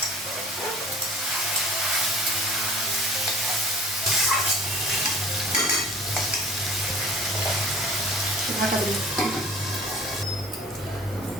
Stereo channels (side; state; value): both; normal; correlation 0.47